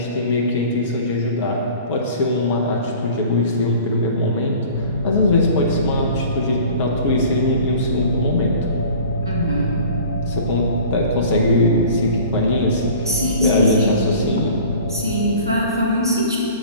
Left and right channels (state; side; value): inverted; both; correlation -0.45